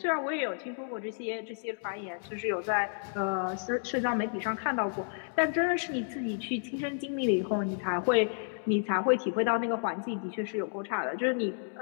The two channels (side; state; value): right; silent; digital silence